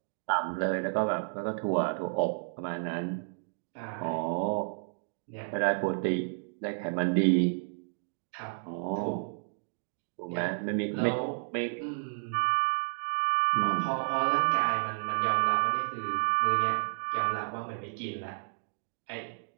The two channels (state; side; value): silent; left; digital silence